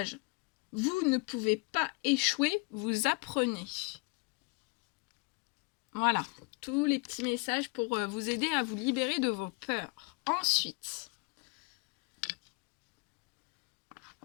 Vous ne pouvez pas échouer, vous apprenez. Voilà, tous les petits messages pour vous aider à vous libérer de vos peurs. Ensuite,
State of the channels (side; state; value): right; quieter; 32.3 dB